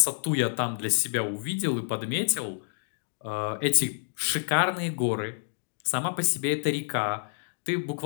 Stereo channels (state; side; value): silent; right; digital silence